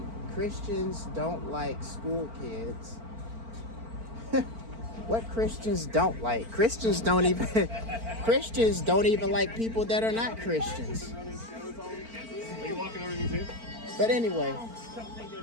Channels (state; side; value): late; left; 4.4 ms